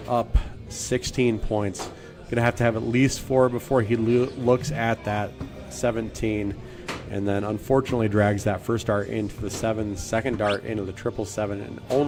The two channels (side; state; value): both; identical; correlation 1.00